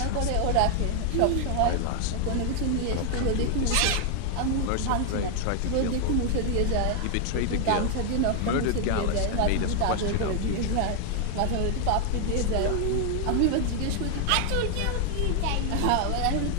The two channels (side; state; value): both; different; correlation 0.00